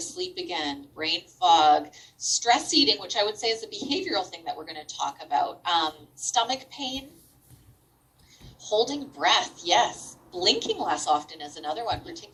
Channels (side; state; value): both; identical; correlation 1.00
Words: sleep again, brain fog, stress eating, which I would say is a behavioral thing that we're going to talk about. Stomach pain, holding breath, yes. Blinking less often is another one,